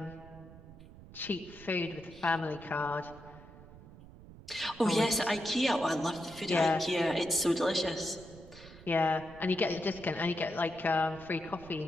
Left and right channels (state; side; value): noise; right; rumble, 18 dB below the sound